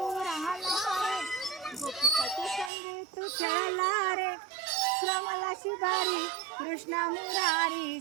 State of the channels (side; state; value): left; drops out; at 2.7 s